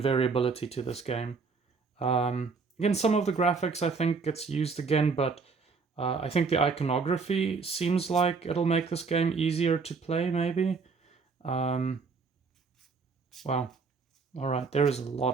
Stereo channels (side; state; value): left; quieter; 4.8 dB